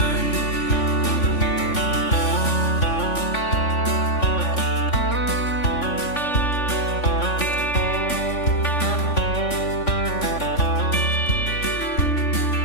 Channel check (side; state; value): right; late; 3.5 ms